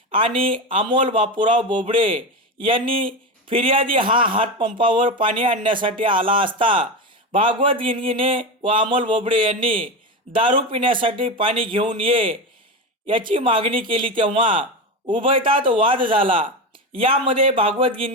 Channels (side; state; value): both; normal; correlation 0.19